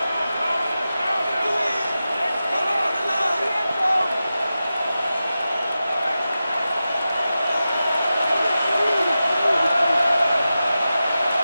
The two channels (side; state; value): both; inverted; correlation -0.93